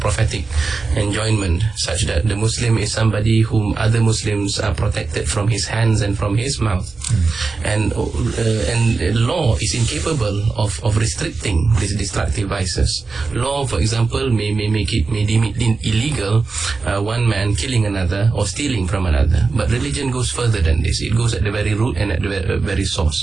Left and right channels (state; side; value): quieter; left; 4.2 dB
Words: prophetic enjoinment, such that the Muslim is somebody whom other Muslims are protected from his hands and from his mouth. And law is incapable of restricting these destructive vices. Law, for example, may deem it illegal, one man killing another or stealing from another. But religion goes further than this. It goes at the very root and at the very